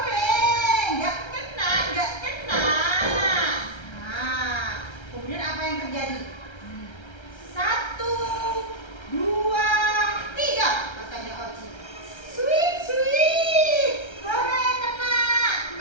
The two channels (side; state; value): right; late; 1.3 ms